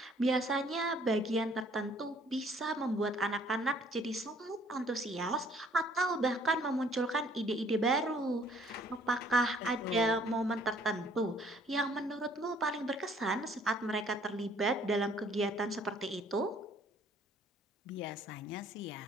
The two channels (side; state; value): both; normal; correlation 0.60